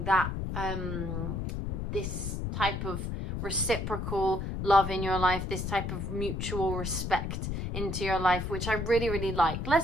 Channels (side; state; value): left; noise; rumble, 3 dB below the sound